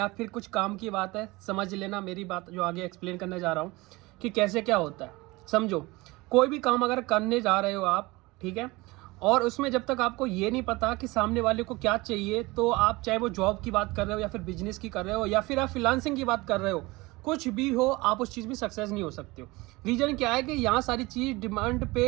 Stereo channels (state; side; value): quieter; left; 22.2 dB